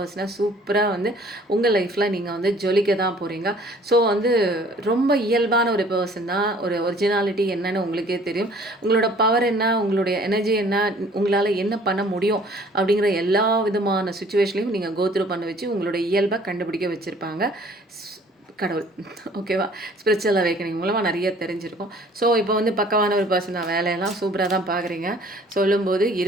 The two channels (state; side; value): normal; both; correlation 0.54